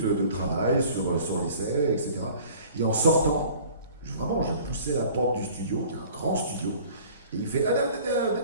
de travail sur l'essai, etc. Et en sortant, je poussais la porte du studio, qui est un grand studio, et il fait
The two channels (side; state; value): both; inverted; correlation -0.48